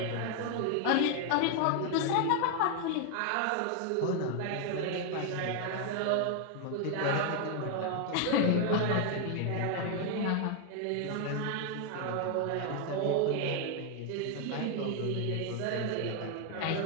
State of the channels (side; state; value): both; different; correlation 0.00